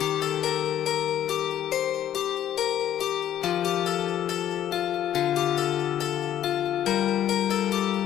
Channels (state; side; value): quieter; right; 10.9 dB